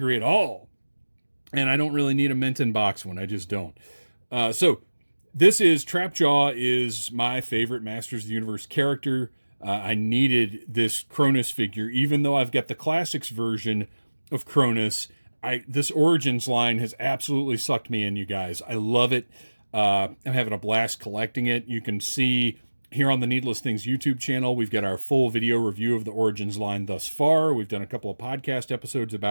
at all. And I don't really need a mint in box one. I just don't. So this is Trapjaw is my favorite Masters of the Universe character. I needed this Cronus figure, even though I've got the Classics version of Cronus. This Origins line has absolutely sucked me in, you guys. I love it. I'm having a blast collecting it. You can see here on the Needless Things YouTube channel, we've got our full video review of the Origins line thus far. We've done a couple of podcast episodes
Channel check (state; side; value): inverted; both; correlation -1.00